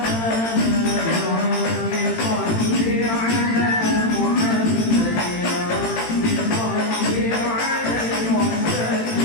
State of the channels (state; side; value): late; right; 18 ms